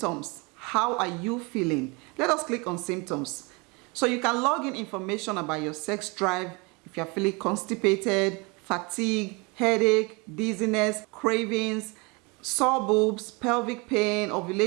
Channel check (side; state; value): left; quieter; 28.6 dB